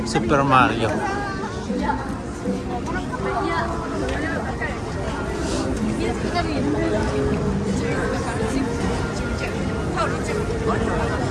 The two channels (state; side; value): identical; both; correlation 1.00